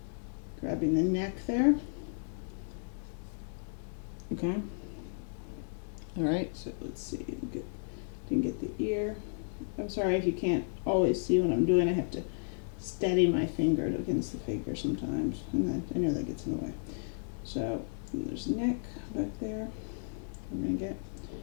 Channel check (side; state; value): right; silent; digital silence